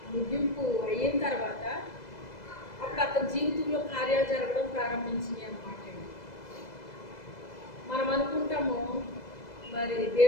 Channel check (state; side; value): late; right; 2.0 ms